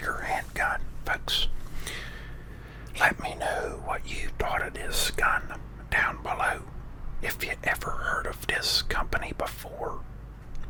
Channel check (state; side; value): identical; both; correlation 1.00